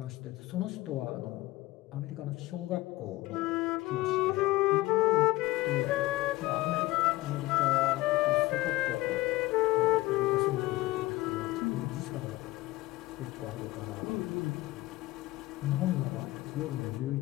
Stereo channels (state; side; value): quieter; right; 18.9 dB